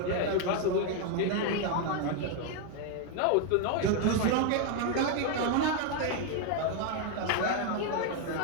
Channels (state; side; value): different; both; correlation 0.01